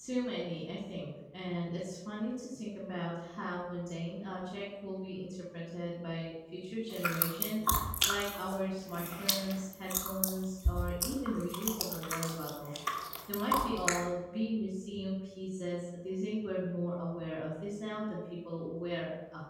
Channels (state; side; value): identical; both; correlation 1.00